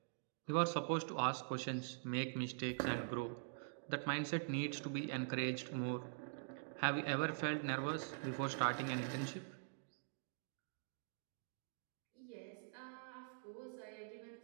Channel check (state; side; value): silent; left; digital silence